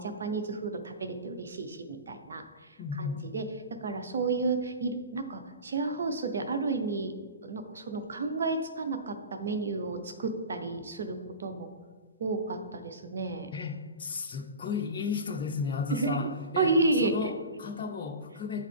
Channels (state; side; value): inverted; both; correlation -0.31